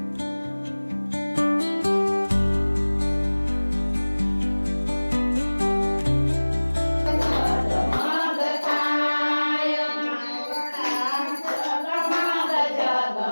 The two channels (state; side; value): inverted; both; correlation -1.00